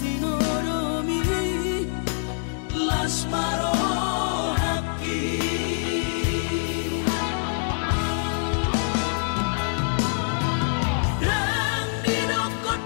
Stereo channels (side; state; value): right; silent; digital silence